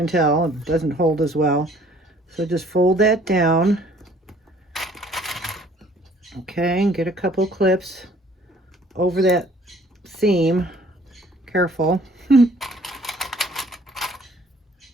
tell, it doesn't hold as well. So just fold that down. Okay, and get a couple clips over that seam. Careful.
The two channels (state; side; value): normal; both; correlation 0.57